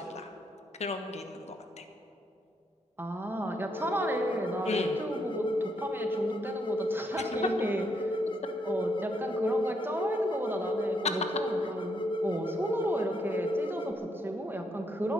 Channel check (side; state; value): both; normal; correlation 0.76